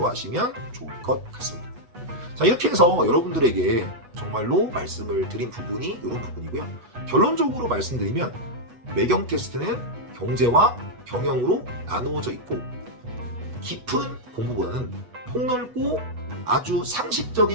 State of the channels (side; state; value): left; late; 8.1 ms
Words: 좋을 것 같습니다. 자, 이렇게 해서 여러분들에게 정말로 말씀을 드린 부분이 이런 부분이고요. 결론적으로 말씀드리면 매경 테스트는 경제와 경영으로 나누어져 있고 깊은 공부보다는 폭넓고 아주